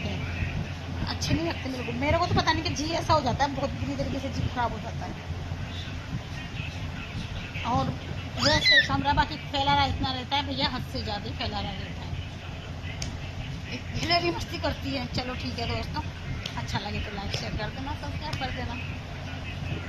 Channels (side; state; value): both; identical; correlation 1.00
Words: हैं, अच्छे नहीं लगते मेरे को तो पता नहीं कि जी ऐसा हो जाता है, बहुत बुरी तरीके से जी खराब हो जाता है। और वैसे कमरा बाकी फैला रहा इतना रहता है भैया, हद से ज़्यादा फैला रहा रहता है, हिलेरी मस्ती करती है। चलो ठीक है दोस्तों, अच्छा लगे तो लाइक शेयर कर देना, सब्सक्राइब कर देना।